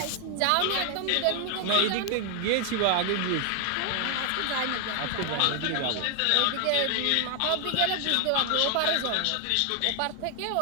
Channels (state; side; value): different; both; correlation 0.00